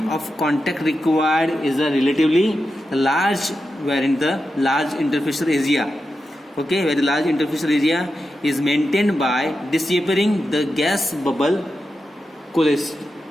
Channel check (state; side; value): normal; both; correlation 0.89